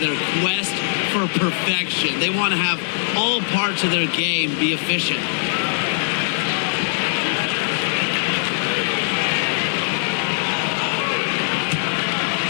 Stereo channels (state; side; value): silent; right; 64 dB below the other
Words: quest for perfection. They want to have all parts of their game be efficient.